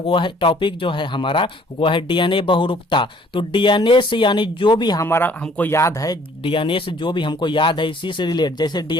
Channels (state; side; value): normal; both; correlation 0.58